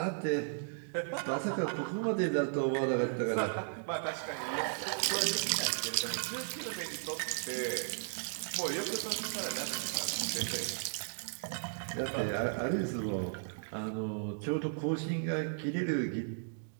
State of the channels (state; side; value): silent; left; digital silence